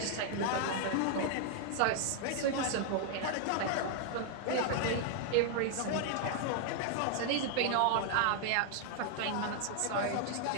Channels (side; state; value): both; different; correlation 0.00